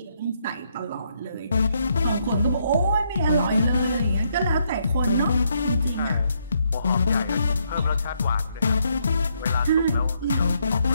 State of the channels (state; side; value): inverted; both; correlation -0.75